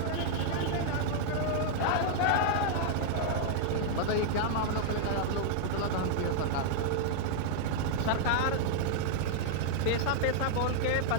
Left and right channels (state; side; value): different; both; correlation 0.00